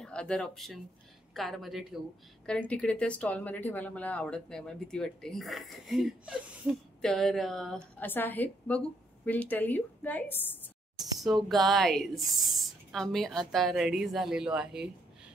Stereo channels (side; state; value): both; normal; correlation 0.73